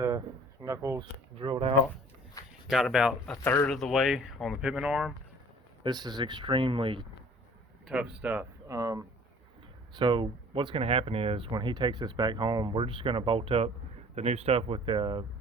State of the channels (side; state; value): both; normal; correlation 0.51